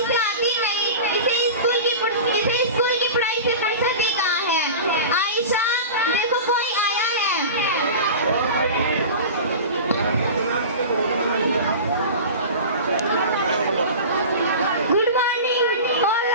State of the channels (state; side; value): inverted; both; correlation -0.32